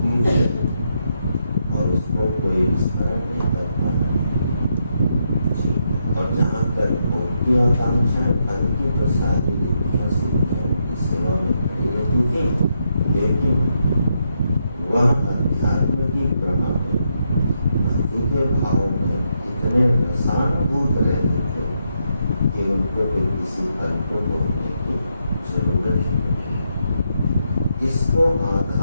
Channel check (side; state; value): both; inverted; correlation -0.80